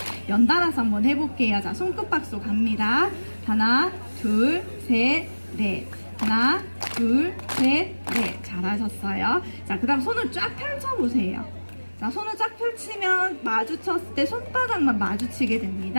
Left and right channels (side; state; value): both; inverted; correlation -1.00